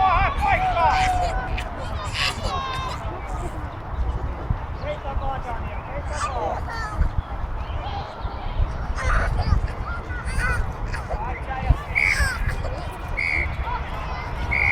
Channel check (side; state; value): both; identical; correlation 1.00